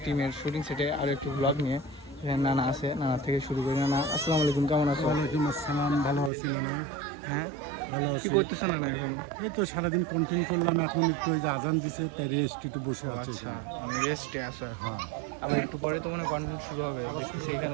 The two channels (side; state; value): left; drops out; at 6.3 s